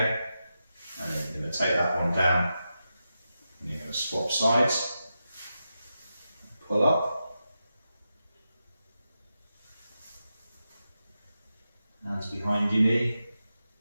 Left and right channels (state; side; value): inverted; both; correlation -0.89